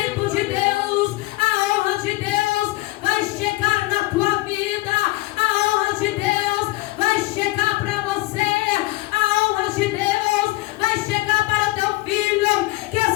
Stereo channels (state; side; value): quieter; right; 20.2 dB